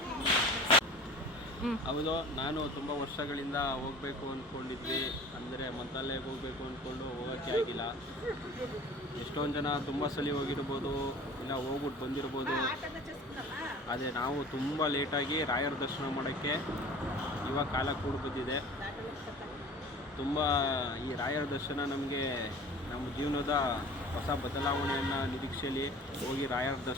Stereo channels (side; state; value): both; normal; correlation 0.43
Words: ಹೌದು, ನಾನು ತುಂಬ ವರ್ಷಗಳಿಂದ ಹೋಗಬೇಕು ಅಂದ್ಕೊಂಡಿದ್ವಿ. ಅಂದರೆ ಮಂತ್ರಾಲಯಕ್ಕೆ ಹೋಗಬೇಕು ಅಂದ್ಕೊಂಡು ಹೋಗೋಕ್ಕೆ ಆಗಿಲ್ಲ. ಎಷ್ಟೊಂದು ಜನ ತುಂಬ ಸಲ ಹೋಗಿರ್ಬೋದು, ಇಲ್ಲ ಹೋಗ್ಬಿಟ್ಟು ಬಂದಿರ್ಬೋದು. ಆದರೆ ನಾವು ತುಂಬ ಲೇಟಾಗಿ ರಾಯರ ದರ್ಶನ ಮಾಡೋಕ್ಕೆ ಇವಾಗ ಕಾಲ ಕೂಡ ಬಂದಿದೆ. ತುಂಬ ಈ ರಾಯರ ದರ್ಶನ ನಮಗೆ ನಮ್ಮ ಜೀವನದ ಹೊಸ ಬದಲಾವಣೆಯನ್ನು ನಿರೀಕ್ಷೆಯಲ್ಲಿ ಹೋಗಿ ರಾಯರ